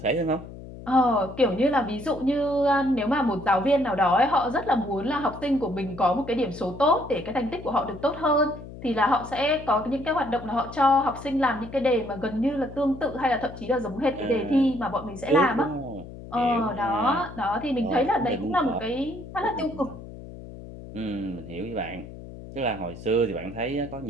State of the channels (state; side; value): noise; left; hum, 14 dB below the sound